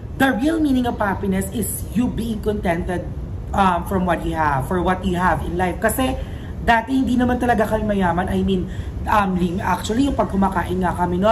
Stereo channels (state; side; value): identical; both; correlation 1.00